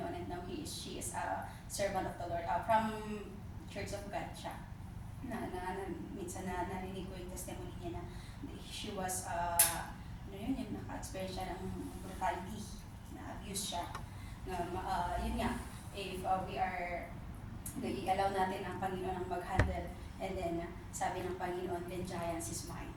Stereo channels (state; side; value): identical; both; correlation 1.00